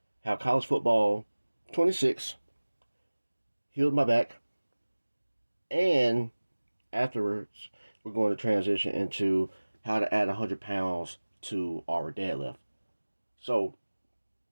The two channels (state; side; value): inverted; both; correlation -1.00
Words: how college football 26 healed my back, and afterwards, we're going to transition into how to add 100 pounds to our deadlift. So,